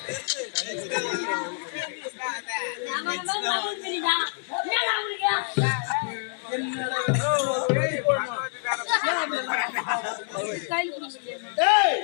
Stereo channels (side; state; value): right; silent; 60 dB below the other